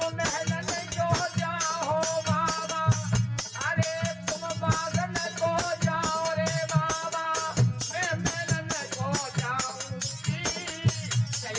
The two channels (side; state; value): both; identical; correlation 1.00